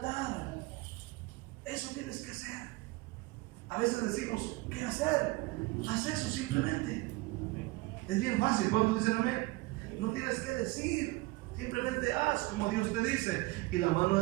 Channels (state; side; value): quieter; left; 21.9 dB